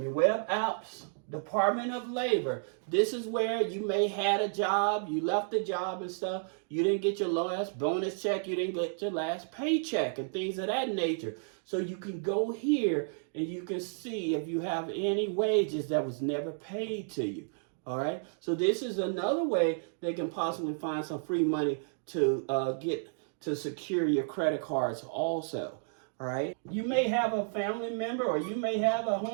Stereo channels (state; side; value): silent; left; digital silence